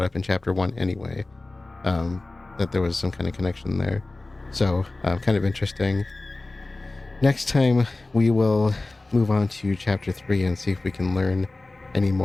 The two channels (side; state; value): right; quieter; 3.1 dB